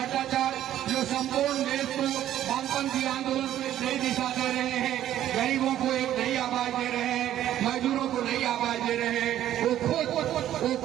जो संपूर्ण देश को वामपंथी आंदोलन को एक नई दिशा दे रहे हैं, गरीबों को एक नई आवाज दे रहे हैं, मजदूरों को नई आवाज दे रहे हैं। वो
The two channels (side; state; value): left; quieter; 12.1 dB